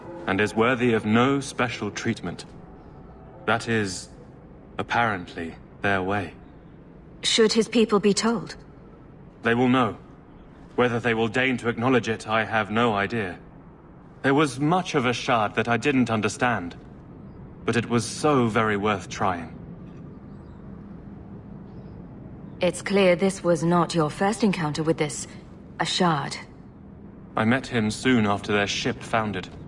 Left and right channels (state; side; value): identical; both; correlation 1.00